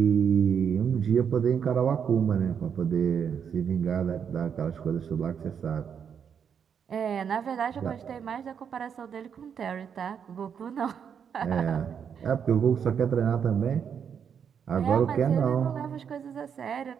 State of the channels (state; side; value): quieter; left; 7.5 dB